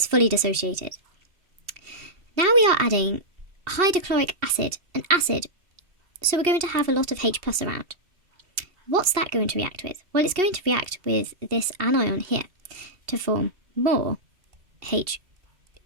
fully dissociated. Now we are adding hydrochloric acid, an acid, so we're going to have a lot of H+ around. What's that going to react with? Well, it's going to react with this anion here to form more H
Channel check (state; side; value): late; left; 2.7 ms